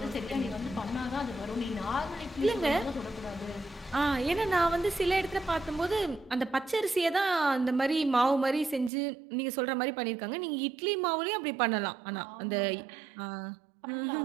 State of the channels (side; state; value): left; drops out; at 8.9 s